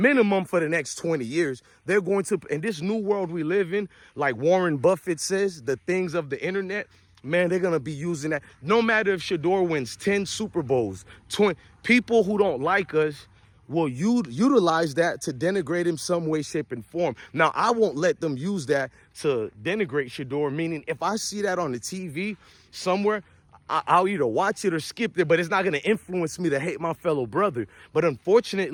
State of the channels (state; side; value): identical; both; correlation 1.00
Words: for the next 20 years. They're going to, in this new world we live in, like Warren Buffett says, the things of the internet, man, they're going to be using that. No matter if Shedeur wins 10 Super Bowls, 20, people who don't like us will utilize that to denigrate him some way, shape, and form. Now, I won't let them use that to denigrate Shedeur, meaning if I see that on the TV somewhere, I'll either watch it or skip it, but it's not going to influence me to hate my fellow brother. But